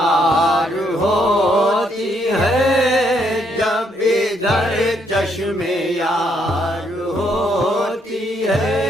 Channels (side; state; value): both; normal; correlation 0.73